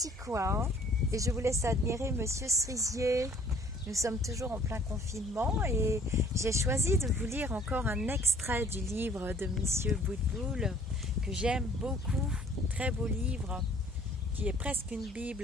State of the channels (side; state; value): both; normal; correlation 0.56